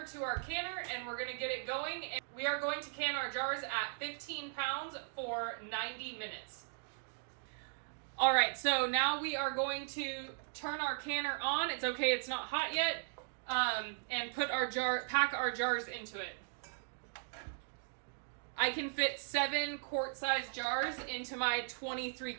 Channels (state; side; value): silent; left; digital silence